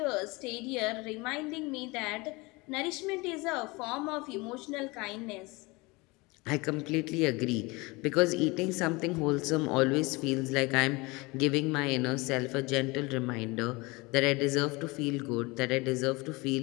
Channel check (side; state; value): right; quieter; 24.6 dB